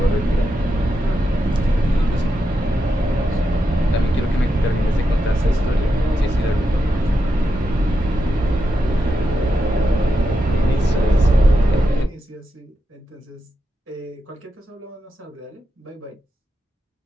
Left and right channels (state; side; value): normal; both; correlation 0.86